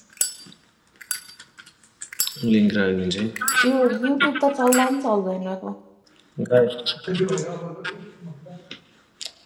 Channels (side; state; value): both; identical; correlation 1.00